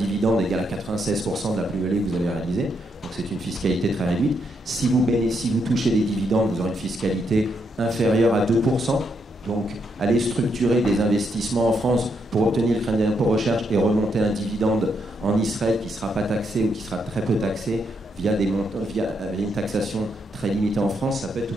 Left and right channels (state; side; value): normal; both; correlation 0.78